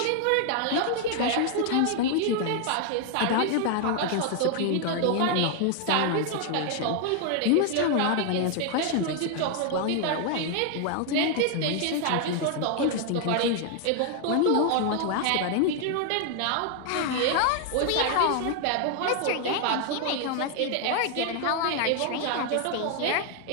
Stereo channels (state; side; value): different; both; correlation 0.00